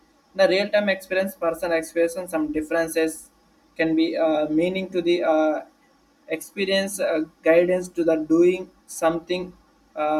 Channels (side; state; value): both; identical; correlation 1.00